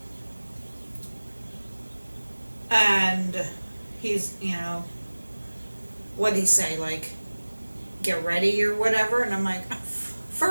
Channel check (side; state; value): both; inverted; correlation -1.00